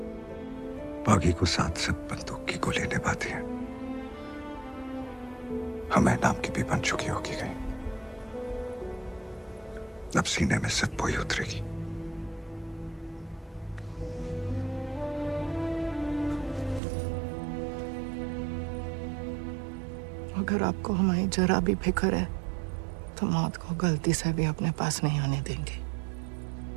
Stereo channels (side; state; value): left; drops out; at 16.8 s